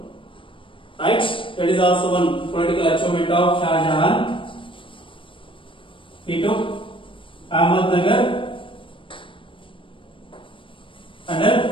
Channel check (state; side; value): late; right; 0.25 ms